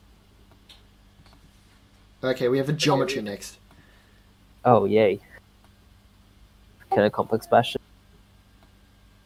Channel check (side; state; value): both; identical; correlation 1.00